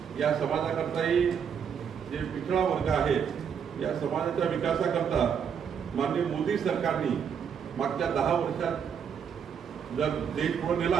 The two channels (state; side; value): quieter; left; 7.4 dB